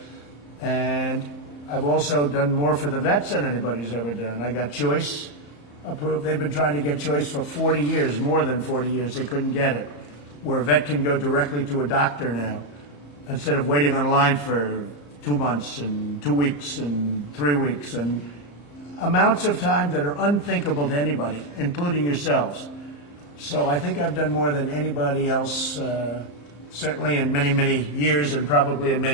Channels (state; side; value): late; right; 34 ms